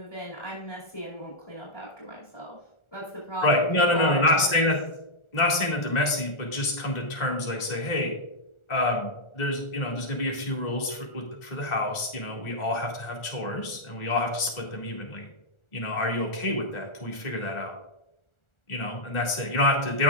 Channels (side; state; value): right; late; 1.4 ms